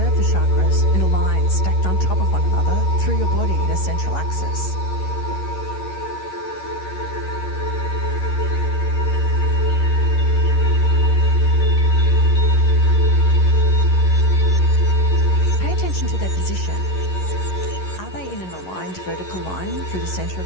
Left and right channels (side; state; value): right; late; 11 ms